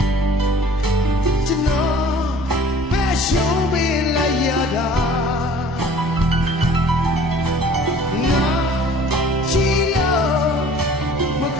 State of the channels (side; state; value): both; normal; correlation 0.50